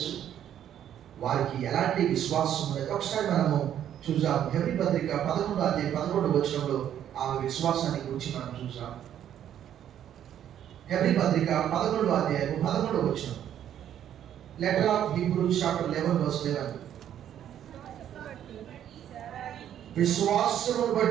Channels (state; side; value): quieter; left; 10.4 dB